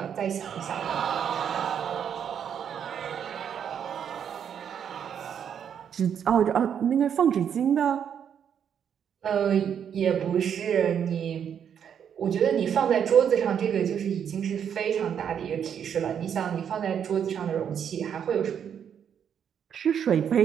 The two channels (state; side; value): quieter; left; 8.3 dB